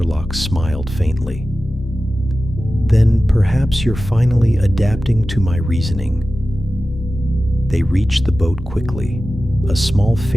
smiled faintly. "Then perhaps you're finally adapting to my reasoning." They reached the boat quickly, a small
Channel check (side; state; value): both; normal; correlation 0.95